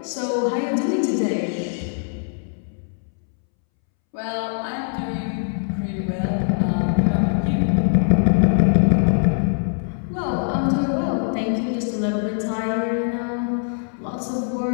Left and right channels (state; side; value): silent; right; 64 dB below the other